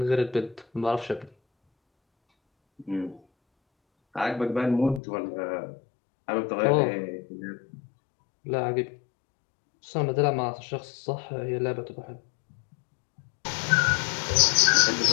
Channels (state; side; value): drops out; right; at 5.0 s